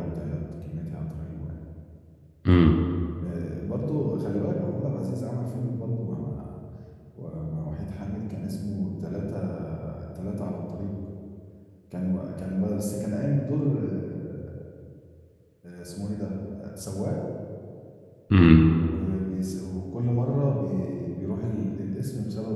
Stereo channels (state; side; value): identical; both; correlation 1.00